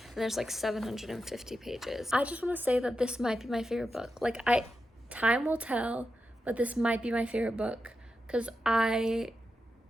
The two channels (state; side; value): normal; both; correlation 0.88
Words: there's like 750 pages. I just want to say that this might be my favorite book. Like time will tell, but this might be my favorite book because I